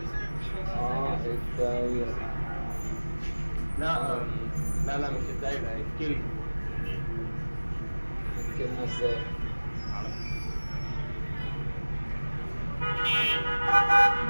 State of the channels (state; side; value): inverted; both; correlation -1.00